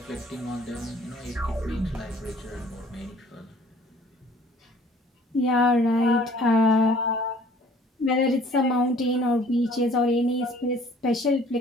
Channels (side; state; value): both; normal; correlation 0.55